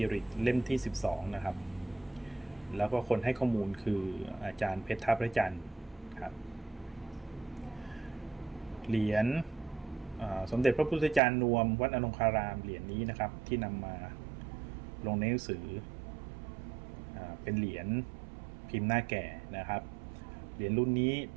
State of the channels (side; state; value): left; drops out; at 11.2 s